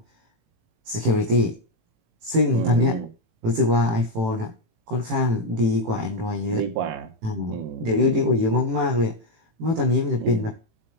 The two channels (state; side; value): late; left; 18 ms